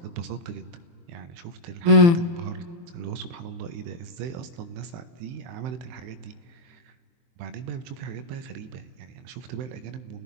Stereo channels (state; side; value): late; left; 23 ms